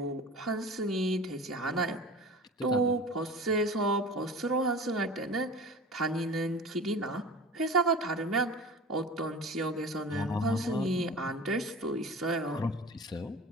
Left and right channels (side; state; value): both; normal; correlation 0.36